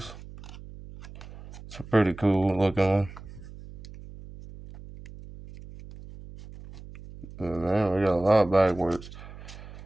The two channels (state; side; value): noise; right; hum, 16 dB below the sound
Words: It's a pretty cool looking one. Oh, man, we got a lot backwards.